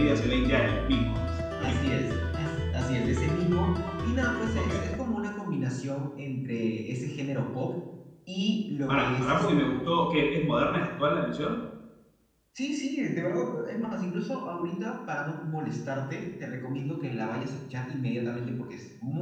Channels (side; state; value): both; identical; correlation 1.00